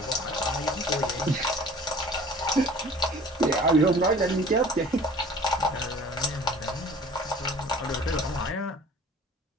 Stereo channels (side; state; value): both; normal; correlation 0.47